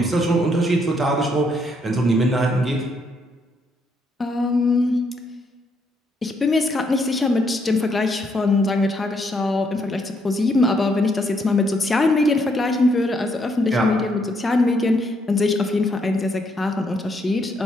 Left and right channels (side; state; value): both; normal; correlation 0.73